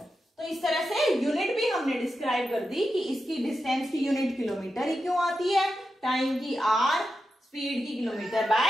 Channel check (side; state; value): both; normal; correlation 0.89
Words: तो इस तरह से यूनिट भी हमने डिस्क्राइब कर दी कि इसकी डिस्टेंस की यूनिट किलोमीटर ही क्यों आती है, टाइम की आर, स्पीड की kilometre